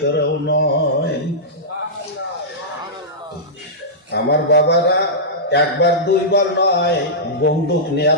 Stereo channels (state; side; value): normal; both; correlation -0.14